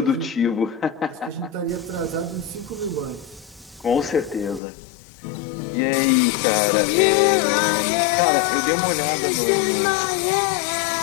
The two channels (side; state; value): right; drops out; at 4.6 s